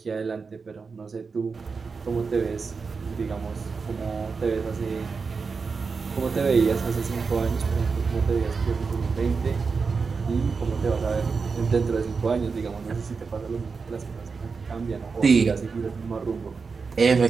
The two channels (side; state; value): left; quieter; 5.0 dB